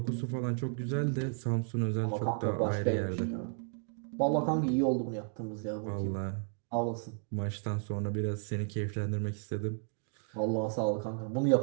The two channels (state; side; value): silent; left; 56 dB below the other